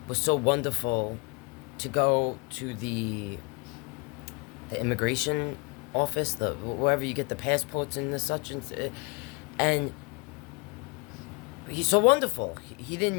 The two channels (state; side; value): quieter; right; 29.9 dB